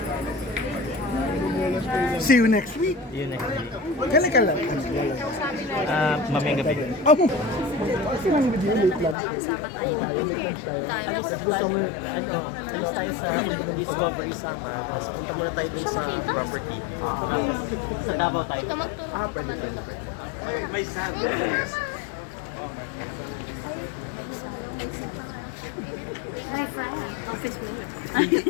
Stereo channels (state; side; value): drops out; right; at 9.2 s